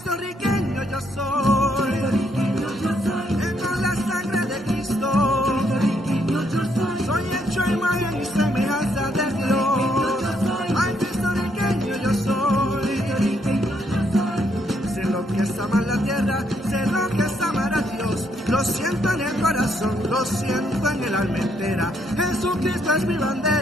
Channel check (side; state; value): both; normal; correlation 0.73